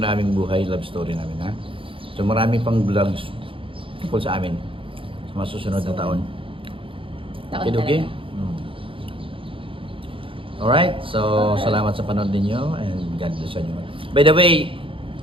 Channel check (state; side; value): late; left; 0.25 ms